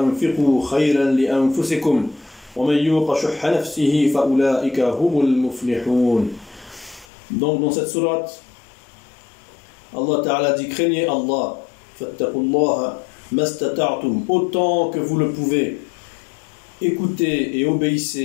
خيرا لأنفسكم ومن يوق شح نفسه فأولئك هم المفلحون. Donc dans cette sourate, Allah Ta'ala dit: craignez Allah, فاتقوا الله ما استطعتم, autant que vous le pouvez, écoutez et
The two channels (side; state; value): right; drops out; at 7.1 s